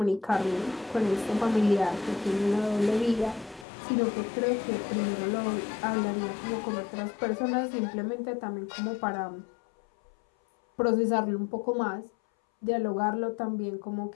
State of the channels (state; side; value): drops out; right; at 3.7 s